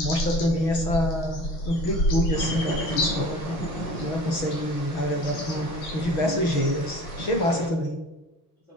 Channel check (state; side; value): late; right; 6.2 ms